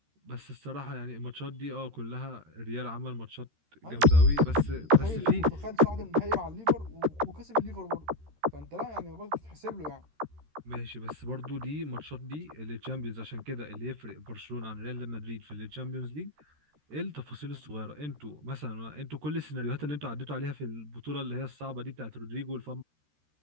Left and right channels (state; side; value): late; left; 13 ms